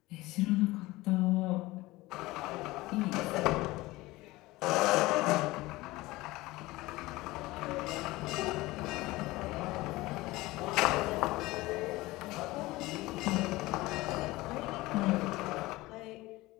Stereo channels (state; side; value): quieter; right; 19.8 dB